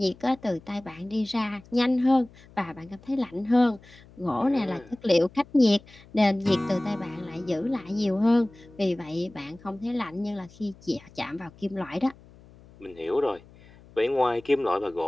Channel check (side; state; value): left; noise; hum, 24 dB below the sound